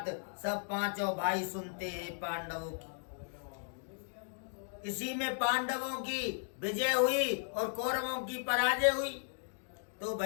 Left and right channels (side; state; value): right; silent; digital silence